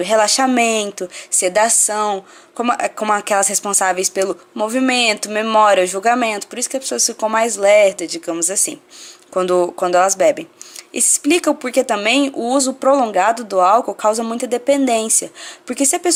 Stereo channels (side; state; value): both; identical; correlation 1.00